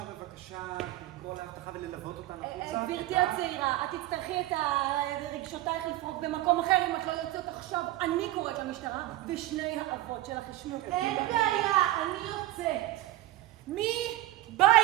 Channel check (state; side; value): quieter; left; 16.0 dB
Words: לקרוא להבטחה וללוות אותנו החוצה. גברתי הצעירה, את תצטרכי את רגשותייך לפרוק במקום אחר אם את לא יוצאת עכשיו. אני קוראת למשטרה ושני האבות שלך ישנו. אין בעיה, אני יוצאת. מי בא